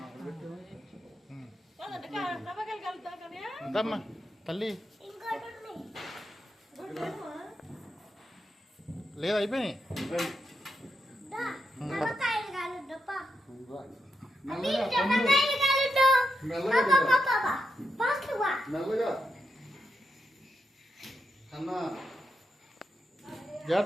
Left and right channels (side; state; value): both; normal; correlation 0.84